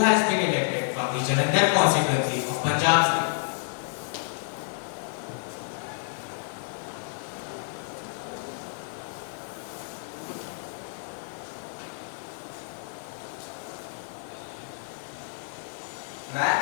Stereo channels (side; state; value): right; silent; 58 dB below the other